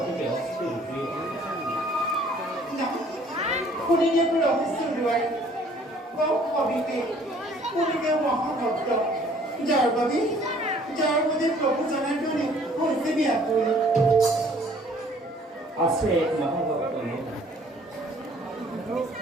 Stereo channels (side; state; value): both; normal; correlation 0.57